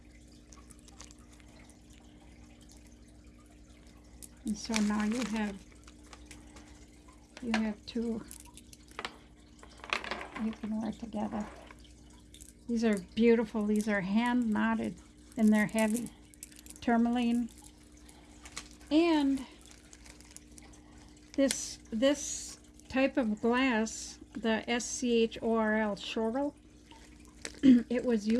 And so now you have two you can wear together. These are beautiful. These are hand knotted and they're heavy. Tourmaline. And this type of glass, the SCHORL, Schorl, it was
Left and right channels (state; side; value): identical; both; correlation 1.00